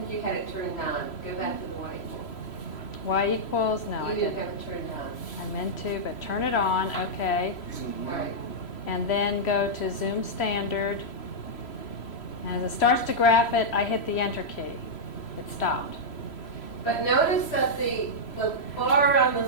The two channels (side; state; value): right; late; 3.0 ms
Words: you had it turned on. Go back to the y equals. y equals, no, I You didn't didn't. have it turned on. I meant to, but turn it on, okay. All right. And then go to zoom standard. And as it starts to graph it, I hit the enter key. It stopped. But notice that the bar on the